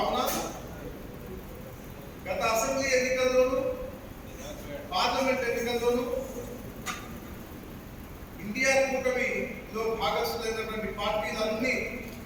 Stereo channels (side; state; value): both; identical; correlation 1.00